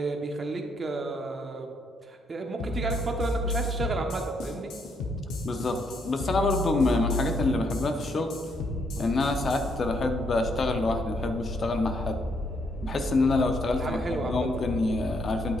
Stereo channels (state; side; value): normal; both; correlation 0.73